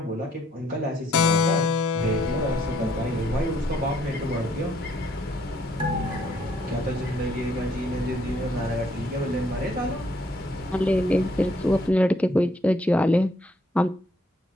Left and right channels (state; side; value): normal; both; correlation 0.68